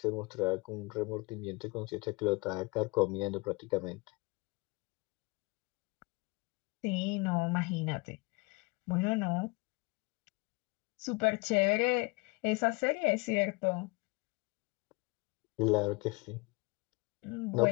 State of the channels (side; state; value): right; quieter; 27.2 dB